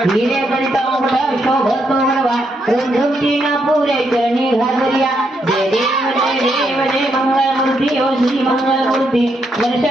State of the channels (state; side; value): normal; both; correlation 0.78